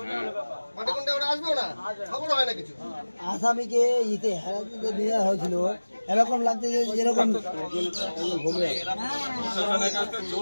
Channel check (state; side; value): inverted; both; correlation -1.00